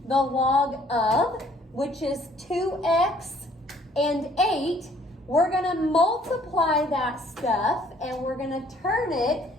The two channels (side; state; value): both; normal; correlation 0.60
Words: the log of, which is 2x and 8, we're going to multiply that stuff and we're going to turn it